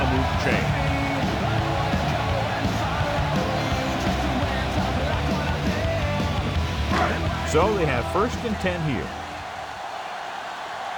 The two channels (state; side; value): identical; both; correlation 1.00